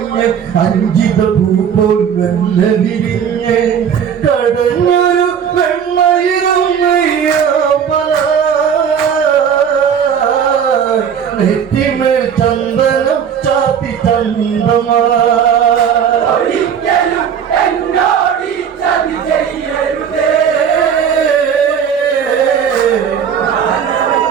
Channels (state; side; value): quieter; left; 7.8 dB